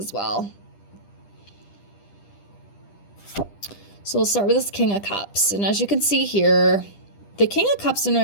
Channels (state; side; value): late; right; 10 ms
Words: well. So we'll start with this King of Cups. And as you can see here, the King of Cups in